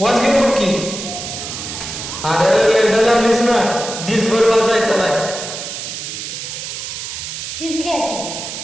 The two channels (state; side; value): noise; right; hiss, 7 dB below the sound